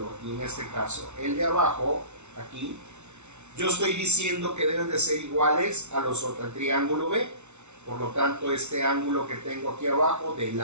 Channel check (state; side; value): late; left; 0.82 ms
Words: y en este caso el de abajo, aquí, yo estoy diciendo que deben de ser iguales a los otros, al triángulo B. Por lo tanto, este ángulo que tengo aquí abajo,